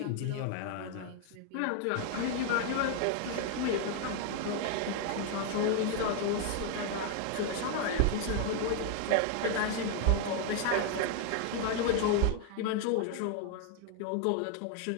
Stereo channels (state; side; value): different; both; correlation 0.00